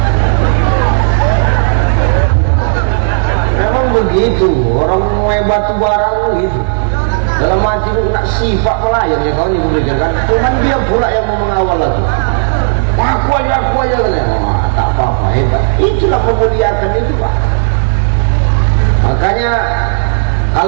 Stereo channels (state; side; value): silent; left; digital silence